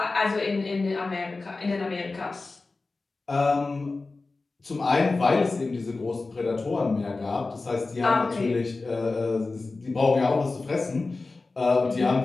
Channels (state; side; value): quieter; right; 3.6 dB